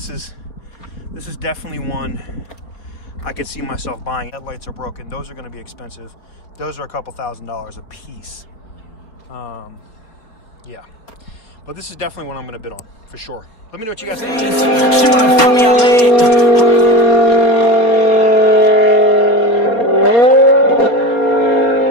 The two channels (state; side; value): late; right; 4.2 ms